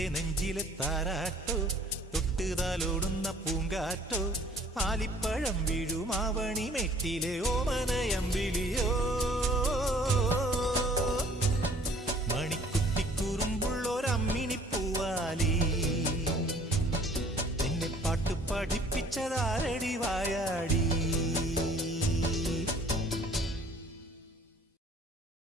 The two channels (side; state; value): both; normal; correlation 0.55